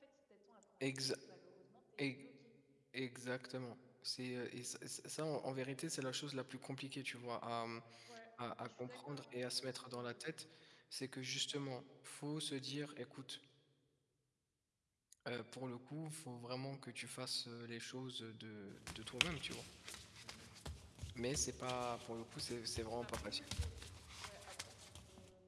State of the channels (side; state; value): both; identical; correlation 1.00